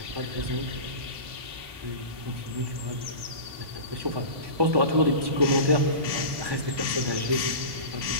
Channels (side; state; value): left; late; 1.2 ms